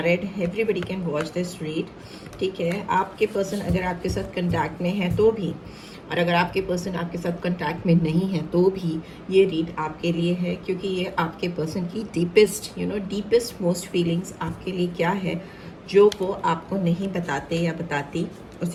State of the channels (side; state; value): both; identical; correlation 1.00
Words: everybody can watch this read. ठीक है, आपके पर्सन अगर आपके साथ कंटैक्ट में है तो भी, और अगर आपके पर्सन आपके साथ कंटैक्ट में नहीं है तो भी ये रीड आपके लिए है, क्योंकि ये आपके पर्सन की डीपेस्ट मोस्ट फीलिंग्स आपके लिए क्या है जो वो आपको नहीं बताते या बताती,